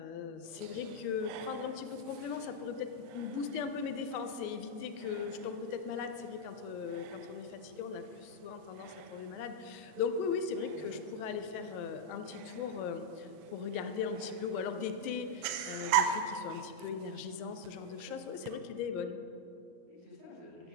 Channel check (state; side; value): late; left; 38 ms